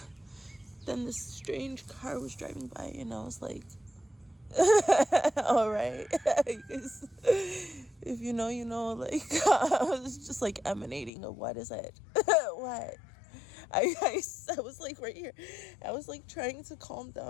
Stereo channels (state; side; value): drops out; right; at 11.1 s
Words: this strange car was driving by, and I was like, all right. If you know, you know. I was just emanating of what is it. What I was right here. I was trying to calm